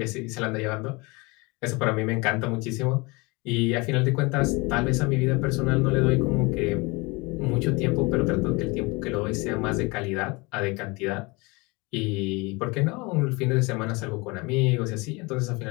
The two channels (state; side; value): quieter; right; 26.1 dB